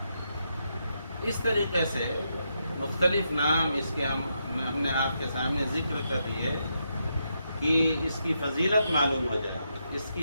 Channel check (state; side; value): inverted; both; correlation -0.82